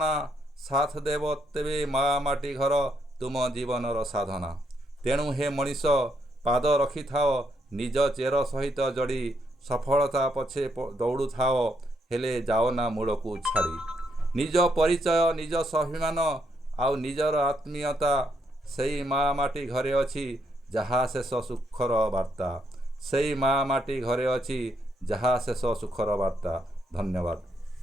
साथ देव तेबे माँ माटी घर तुम जीवनर साधना। तेणु हे मनीष पाद रखि थाओ निज चेर सहित जड़ी, सफलता पछे दौड़ू थाओ हेले जाओ ना मूल को छाड़ी। निज परिचय निज स्वाभिमान आउ निजर आत्मीयता, सेई माँ माटी घरे अछि जहा शेष सुखर वार्ता। सेई माँ माटी घरे अछि जहा शेष सुखर वार्ता। धन्यवाद।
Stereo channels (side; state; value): both; normal; correlation 0.76